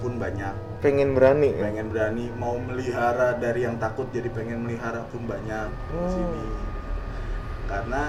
banyak. Pengen berani ya? Pengen berani mau melihara, dari yang takut jadi pengen melihara pun banyak di sini.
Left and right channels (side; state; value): both; identical; correlation 1.00